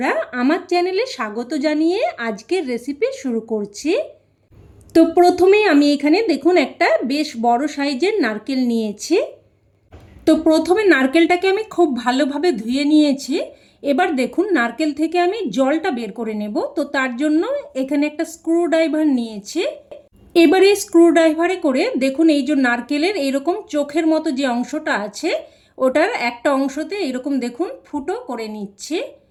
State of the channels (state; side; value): identical; both; correlation 1.00